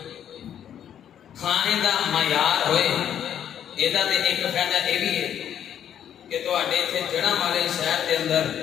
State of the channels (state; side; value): quieter; right; 9.7 dB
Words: کھانے دا معیار ہوئے، یہ ایک فائدہ یہ بھی ہے کہ تواڈے اتنے جڑاں والے شہر کے اندر